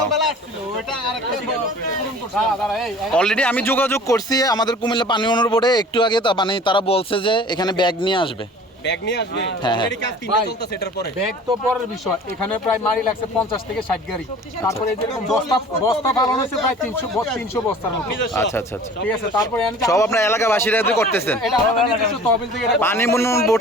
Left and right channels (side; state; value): both; normal; correlation 0.45